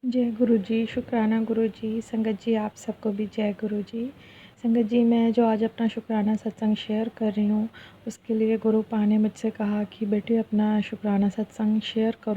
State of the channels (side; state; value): both; identical; correlation 1.00